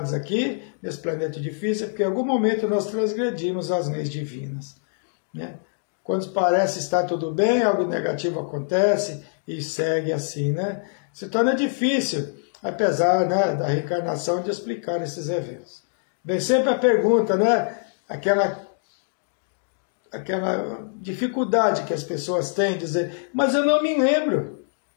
aqui, nesse planeta difícil, é porque em algum momento nós transgredimos as leis divinas, né? Quando parece estar tudo bem, algo negativo acontece e segue assim, né? Se torna difícil, apesar, né, da reencarnação, de explicar esses eventos. Vem sempre a pergunta, né? Aquela dificuldade que as pessoas têm de dizer, mas eu não me lembro.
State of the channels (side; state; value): right; silent; digital silence